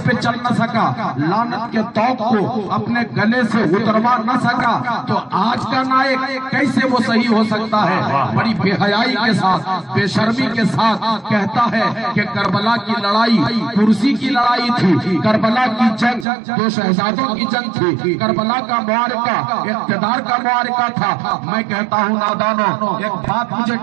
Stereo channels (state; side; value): drops out; left; at 16.2 s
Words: پہ چل نہ سکا، لعنت کے طوق کو اپنے گلے سے اتروا نہ سکا، تو آج کا نائک کیسے وہ صحیح ہو سکتا ہے؟ بڑی بے حیائی کے ساتھ، بے شرمی کے ساتھ کہتا ہے کہ کربلا کی لڑائی کرسی کی لڑائی تھی، کربلا کی جنگ دو شہزادوں کی جنگ تھی، کربلا کا معرکہ اقتدار کا معرکہ تھا۔ میں کہتا ہوں نادانوں، ایک بات مجھے